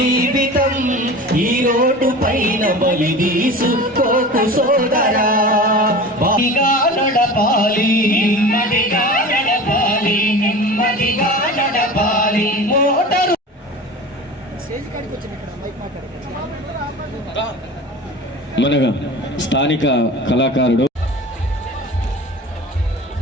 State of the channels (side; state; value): both; normal; correlation 0.36